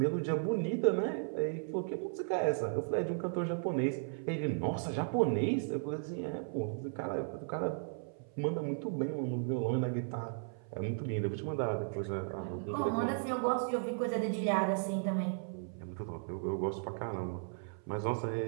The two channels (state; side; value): silent; left; 54 dB below the other